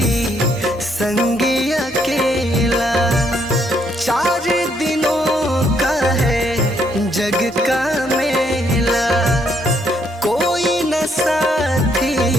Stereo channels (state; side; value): normal; both; correlation 0.71